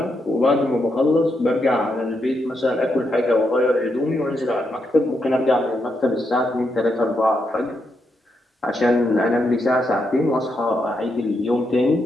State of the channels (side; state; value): both; normal; correlation 0.81